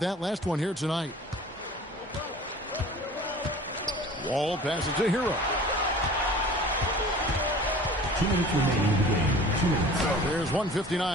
that last one here tonight. Wall passes to Hero. 2 minutes remaining in the game. 2 minutes. There's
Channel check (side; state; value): both; normal; correlation 0.44